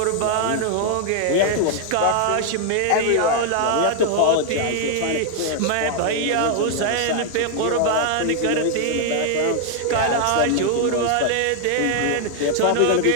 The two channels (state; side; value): different; both; correlation 0.00